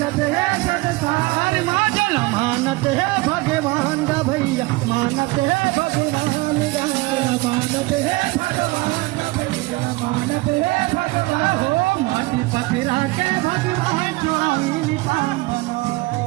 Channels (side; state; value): left; quieter; 22.3 dB